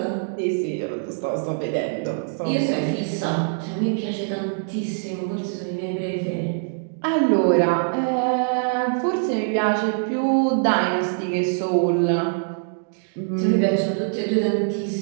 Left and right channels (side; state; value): left; silent; digital silence